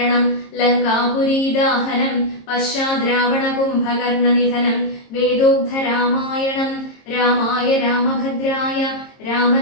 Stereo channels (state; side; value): late; right; 22 ms